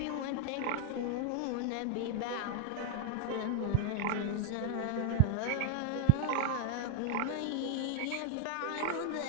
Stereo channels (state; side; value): different; both; correlation 0.00